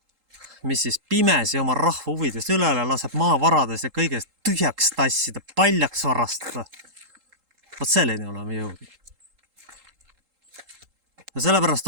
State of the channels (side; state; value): left; late; 3.8 ms